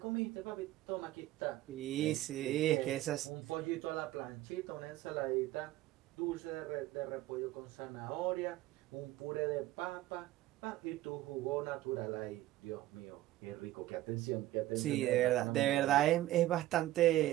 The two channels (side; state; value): left; quieter; 15.4 dB